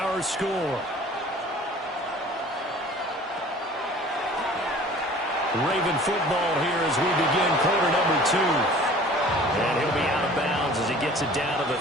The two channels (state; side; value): normal; both; correlation 0.47